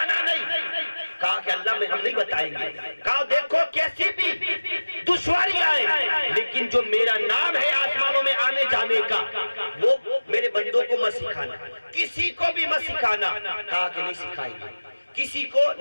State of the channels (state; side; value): inverted; both; correlation -1.00